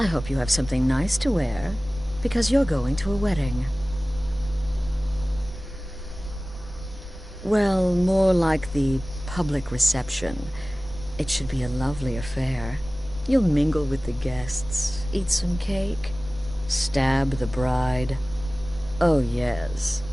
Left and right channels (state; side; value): normal; both; correlation 0.98